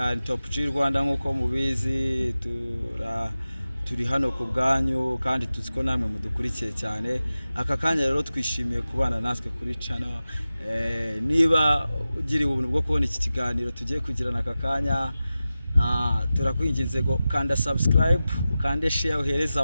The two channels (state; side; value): inverted; both; correlation -0.95